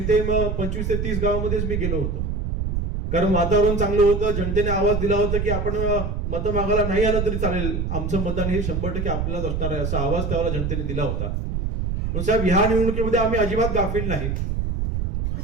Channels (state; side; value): noise; right; rumble, 2 dB below the sound